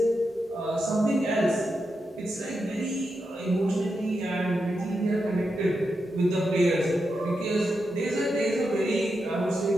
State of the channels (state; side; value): normal; both; correlation 0.86